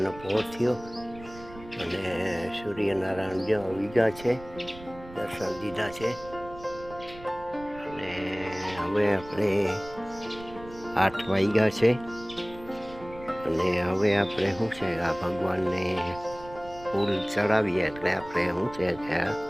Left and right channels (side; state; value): right; noise; rumble, 18 dB below the sound